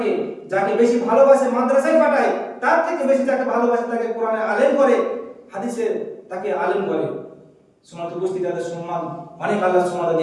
যাকে বেশি ভালোবাসে মাদ্রাসায় পাঠায়, তার থেকে বেশি যাকে ভালোবাসে তাকে কোরআনে আলেম করে, হাদিসে তাকে আলেম করে। সমাজ উপস্থিতি তাদের সম্মান অনেক আল্লাহ সুবহানাহু ওয়া তাআলা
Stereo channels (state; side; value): identical; both; correlation 1.00